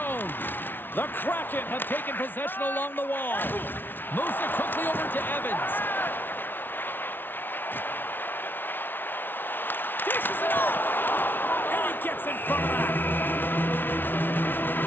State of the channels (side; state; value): right; late; 0.097 ms